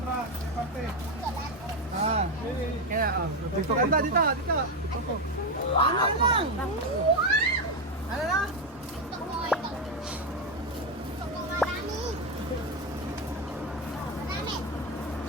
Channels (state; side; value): normal; both; correlation 0.09